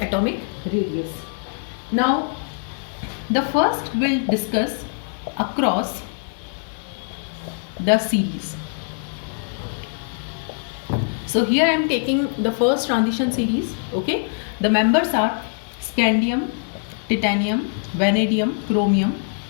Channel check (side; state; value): right; silent; 64 dB below the other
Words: atomic radius. Now the first we'll discuss across the series. So here I am taking the first transition series. Okay, the members are scandium, titanium, vanadium, chromium,